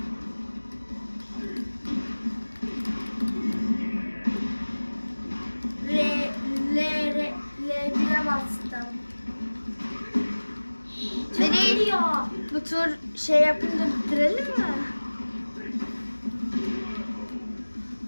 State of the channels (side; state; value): both; inverted; correlation -1.00